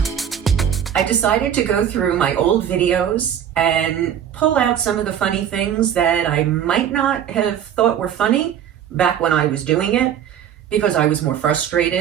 I decided to go through my old videos and pull out some of the funny things that I might not have thought were funny back when I was doing it, because I was more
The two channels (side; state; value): left; quieter; 9.5 dB